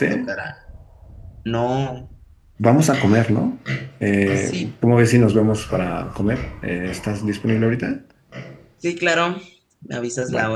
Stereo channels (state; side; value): identical; both; correlation 1.00